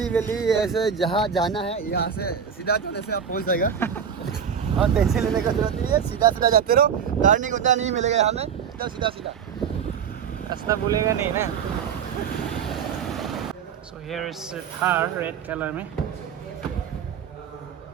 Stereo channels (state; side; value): quieter; left; 7.4 dB